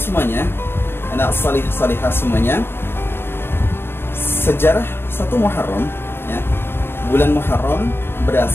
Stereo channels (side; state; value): right; late; 0.11 ms